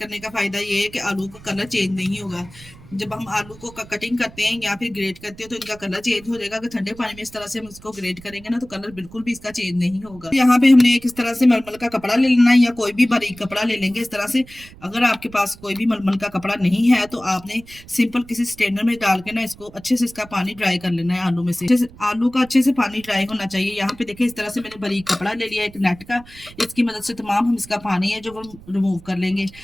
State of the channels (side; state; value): right; noise; rumble, 21 dB below the sound